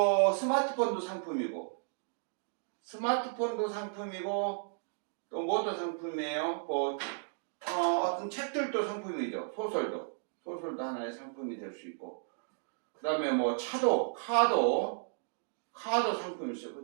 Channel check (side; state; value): left; silent; digital silence